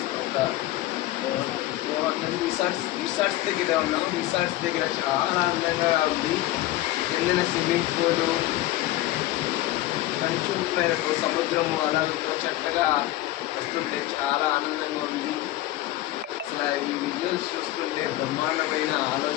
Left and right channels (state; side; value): quieter; right; 16.0 dB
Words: ఒక రిసార్ట్స్ దగ్గర ఉన్నాం. రిసార్ట్స్ దగ్గర చాలా అందంగా ఉంది. కిందన స్విమ్మింగ్ పూలు, కంచు మేరకు సముద్రము అలలతో చక్కగా వస్తుంటే చాలా ఆనందంగా ఉంది. అసలు ఈ విజువల్స్ చూస్తుంటే బ్రహ్మాండమైన